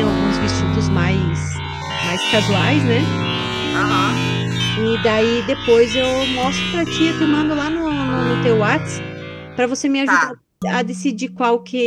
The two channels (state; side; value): identical; both; correlation 1.00